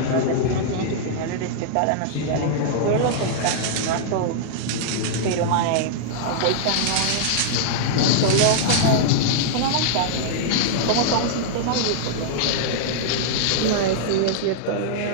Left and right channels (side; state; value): both; different; correlation -0.01